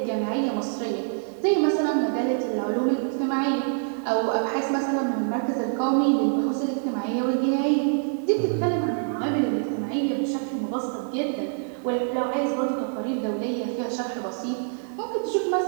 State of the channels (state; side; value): silent; left; 60 dB below the other